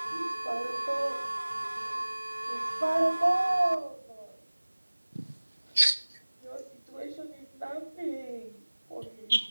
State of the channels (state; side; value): inverted; both; correlation -1.00